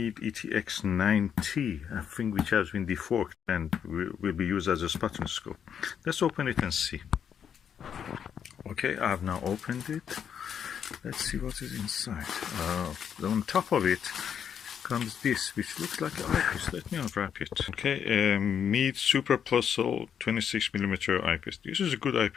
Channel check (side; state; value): right; quieter; 8.1 dB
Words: ETX 9T, I think, which has been deforked and will be used as a spotting scope. Let's open it and see. Okay, I have now opened it. Let's see what is inside. On top of it comes this, which looks like an eyepiece. Let me unwrap it. Okay, Meade Super Plus Sol 26mm eyepiece. This is a good